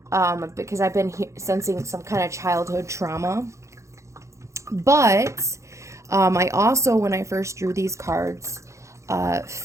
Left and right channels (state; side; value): late; left; 0.14 ms